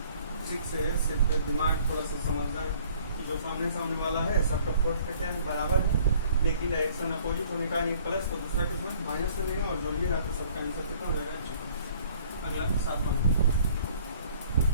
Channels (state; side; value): inverted; both; correlation -0.56